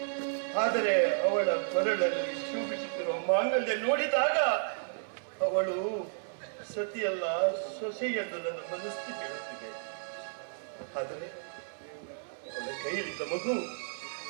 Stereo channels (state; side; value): silent; left; 56 dB below the other